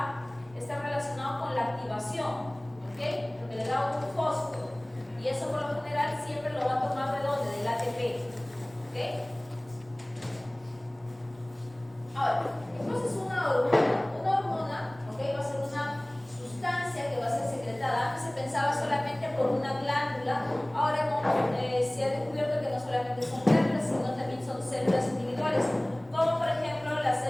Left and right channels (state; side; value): noise; left; rumble, 27 dB below the sound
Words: estar relacionado con la activación, ¿ok? Porque le da un fósforo. Y eso por lo general siempre lo va a tomar de dónde? Del ATP, ¿ok? Ahora, entonces una hormona, ¿ok? Va a ser una sustancia que va a ser secretada. Antes se pensaba solamente por una glándula, ahora se ha descubierto que no solamente son glándulas, sino también son células individuales, como por ejemplo las